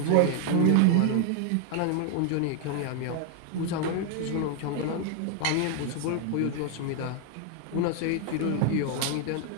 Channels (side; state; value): both; different; correlation 0.00